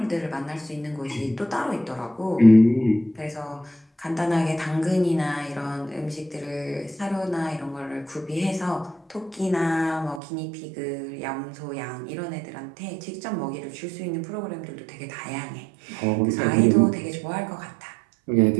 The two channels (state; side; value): drops out; left; at 10.2 s